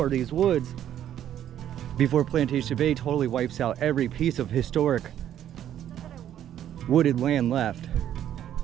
these woods before Plantation Bay totally wipes out every piece of historic wooded land left,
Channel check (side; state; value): left; quieter; 10.8 dB